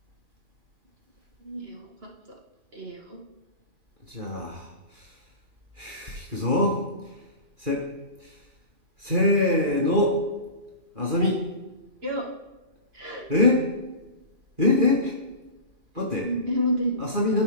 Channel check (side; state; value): left; late; 2.4 ms